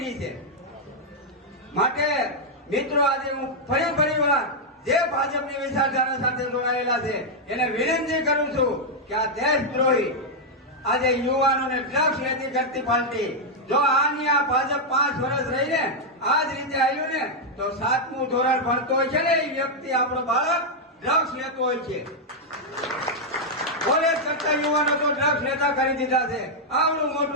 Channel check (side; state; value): both; normal; correlation -0.02